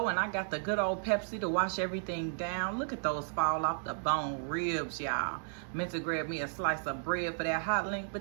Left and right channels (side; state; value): left; silent; digital silence